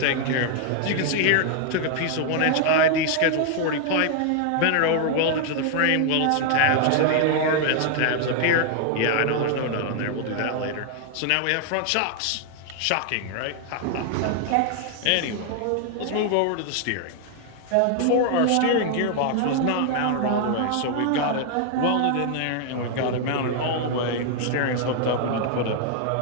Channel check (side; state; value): both; different; correlation 0.00